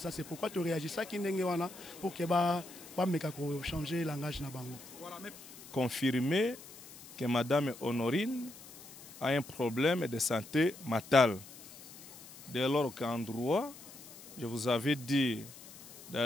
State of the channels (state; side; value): noise; left; hiss, 17 dB below the sound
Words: C'est pourquoi tu réagis ça qui n'est pas pour que pas changer le langage na bango. Confirmer que Madame Honorine a un problème de santé mentale. Dès lors qu'en droit, je vous avais dit